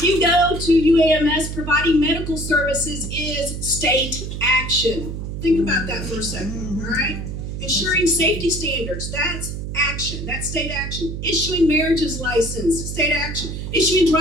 you go to UAMS, providing medical services is state action. Think about that for a second, all right? Ensuring safety standards, that's action. That's state action. Issuing marriages license, state action. Issuing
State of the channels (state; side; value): noise; right; hum, 6 dB below the sound